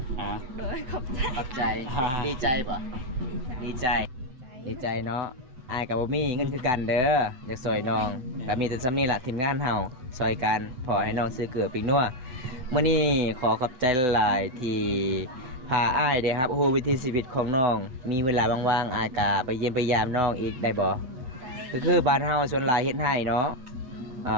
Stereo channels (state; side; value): late; left; 8.0 ms